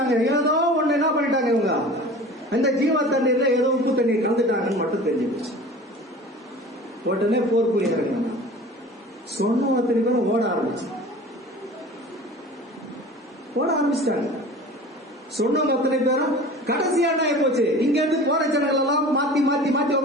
ஏதோ ஒண்ணு என்ன பண்ணிட்டாங்க இவங்க, அந்த ஜீவ தண்ணீர்ல ஏதோ உப்பு தண்ணீர் கலந்துட்டாங்கன்னு மட்டும் தெரிஞ்சிருச்சு. உடனே போர் புரிய இறங்கினாங்க. சொன்ன அத்தனை பேரும் ஓட ஆரம்பிச்சிட்டாங்க. சொன்னவங்க அத்தனை பேரும் கடைசியான போச்சு. இங்க இருந்து போற ஜனங்கள் எல்லாம் மாத்தி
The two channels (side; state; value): both; normal; correlation 0.40